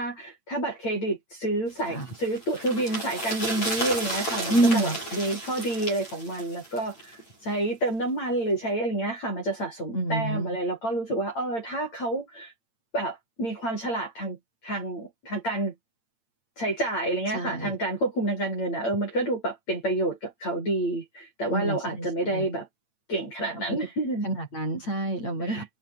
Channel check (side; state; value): right; late; 8.8 ms